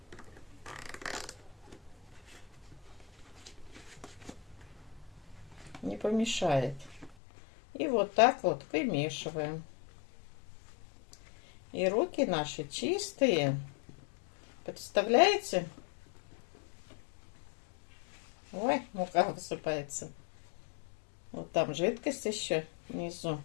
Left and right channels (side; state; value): right; drops out; at 7.2 s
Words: не помешает. И вот так вот вымешиваем. И руки наши чистые. Представляете? Ой, мука высыпается. Вот там жидкость еще внизу.